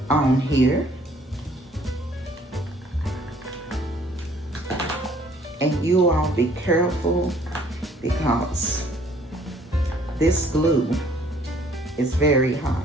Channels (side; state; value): both; normal; correlation 0.59